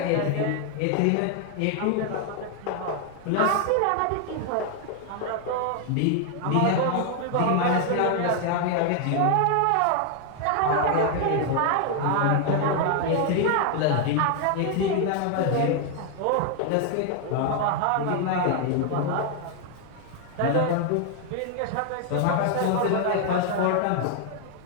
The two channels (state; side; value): different; both; correlation 0.00